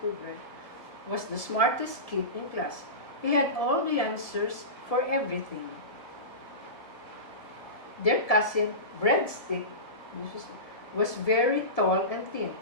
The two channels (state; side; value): late; right; 1.7 ms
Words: was the smartest kid in class. He had all the answers for everything. Their cousin, Breadstick, was very tall and thin,